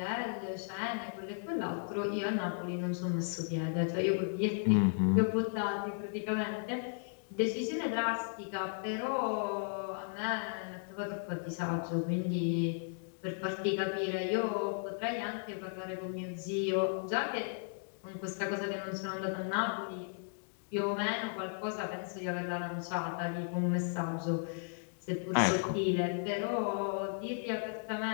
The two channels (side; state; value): right; silent; digital silence